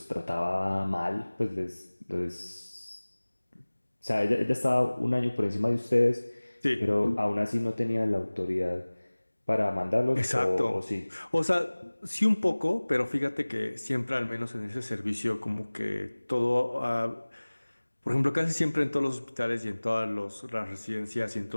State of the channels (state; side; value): inverted; both; correlation -1.00